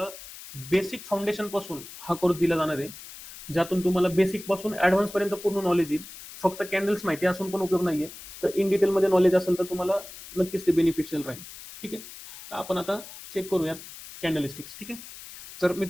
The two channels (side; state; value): left; noise; hiss, 15 dB below the sound